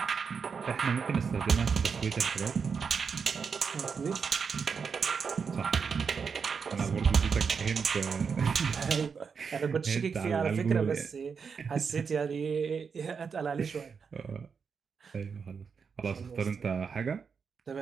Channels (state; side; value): quieter; left; 5.9 dB